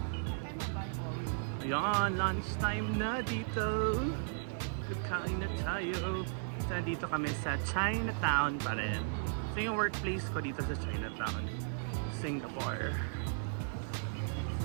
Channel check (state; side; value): silent; left; digital silence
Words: Ayan, lunchtime na dito. Kakain na tayo. So, dito kami sa Chinatown pa rin. So, yung workplace ko dito sa Chinatown, Singapore.